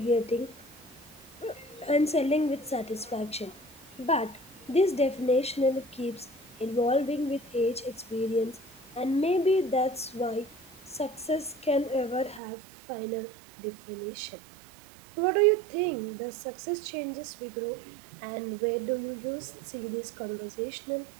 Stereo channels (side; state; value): left; drops out; at 12.4 s